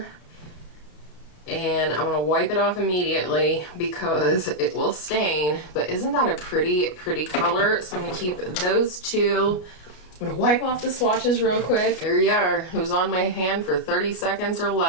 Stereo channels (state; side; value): late; right; 33 ms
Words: And I'm going to wipe it off immediately because it will stain. But isn't that a pretty, pretty color? So I'm going to keep those two. I'm going to wipe off the swatches real quick. There you are. It was on my hand for 30 seconds or